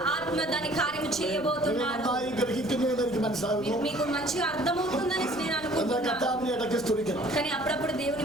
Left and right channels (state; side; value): noise; right; rumble, 21 dB below the sound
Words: ఆత్మ దాని కార్యము നിങ്ങൾ చేయబోతున్నాడు. നന്നായി ഗ്രഹിക്കുന്നു എന്ന് എനിക്ക് മനസ്സിലാകുന്നു. మీకు మంచిగా అర్థమవుతుందని నేను എന്നാൽ అనుకుంటున్నాను. കർത്താവിനെ ഇടയ്ക്ക് സ്തുതിക്കണം. కానీ అప్పుడప్పుడు దేవుని